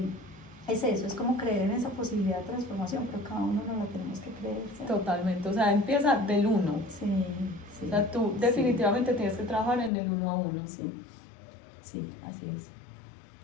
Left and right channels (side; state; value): right; drops out; at 9.9 s